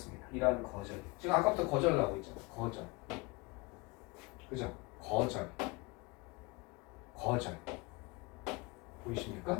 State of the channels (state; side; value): quieter; right; 26.0 dB